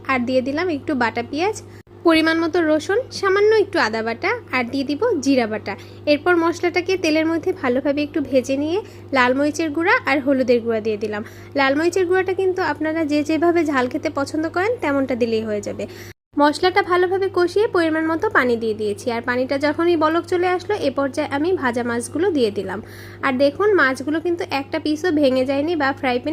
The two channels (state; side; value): identical; both; correlation 1.00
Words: আর দিয়ে দিলাম একটু বাটা পেঁয়াজ, পরিমাণ মতো রসুন, সামান্য একটু আদা বাটা, আর দিয়ে দিব জিরা বাটা। এরপর মশলাটাকে তেলের মধ্যে ভালোভাবে একটু ভেজে নিয়ে লাল মরিচের গুঁড়া আর হলুদের গুঁড়া দিয়ে দিলাম। লাল মরিচের গুঁড়াটা কিন্তু আপনারা যে যেভাবে ঝাল খেতে পছন্দ করেন তেমনটা দিলেই হয়ে যাবে। মশলাটা ভালোভাবে কষিয়ে পরিমাণ মতো পানি দিয়ে দিয়েছি, আর পানিটা যখনই বলক চলে আসলো এ পর্যায়ে আমি ভাজা মাছগুলো দিয়ে দিলাম। আর দেখুন মাছগুলো কিন্তু একটা পিসও ভেঙে যায়নি বা ফ্রাই